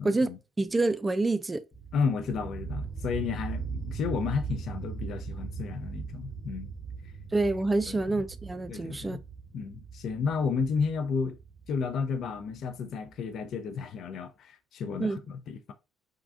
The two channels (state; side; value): normal; both; correlation 0.79